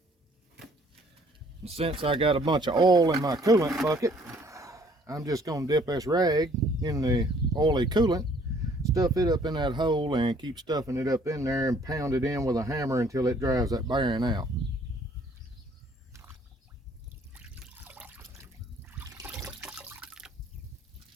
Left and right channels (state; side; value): normal; both; correlation 0.60